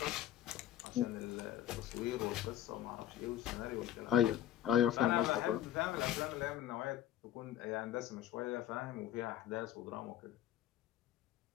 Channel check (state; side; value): quieter; right; 11.9 dB